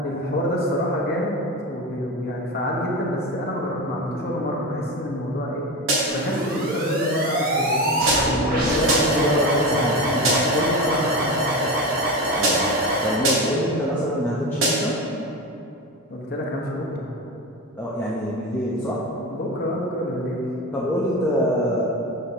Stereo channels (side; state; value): both; normal; correlation 0.22